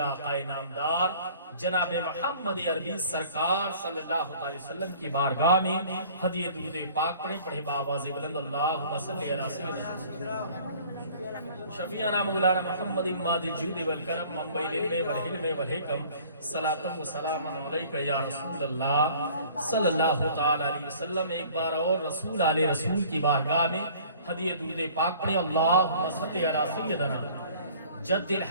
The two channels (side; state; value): both; inverted; correlation -0.51